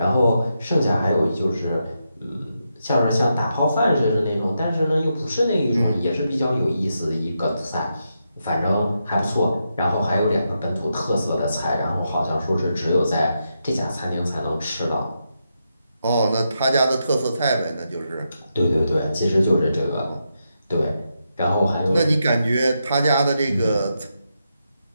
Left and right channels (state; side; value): inverted; both; correlation -0.84